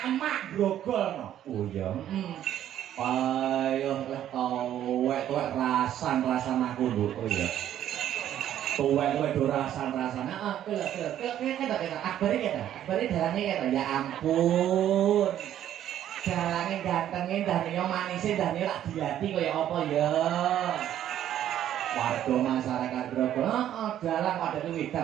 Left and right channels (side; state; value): left; quieter; 11.3 dB